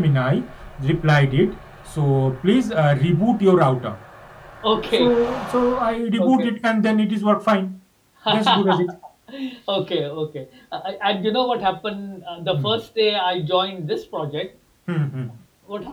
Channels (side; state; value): both; identical; correlation 1.00